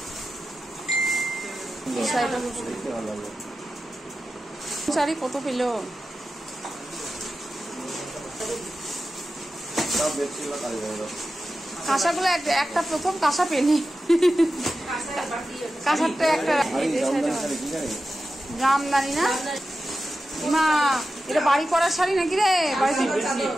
শাড়ি কত পেল? কাঁসাগুলো একটা প্রথম কাঁসা পেনি, কাঁসারটা একটা জামদানি না মা, এটা বাড়ি করার শাড়ি নাকি রে?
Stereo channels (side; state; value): both; normal; correlation 0.93